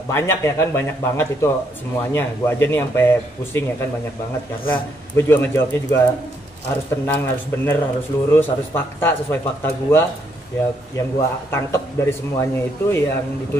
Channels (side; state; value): both; normal; correlation 0.74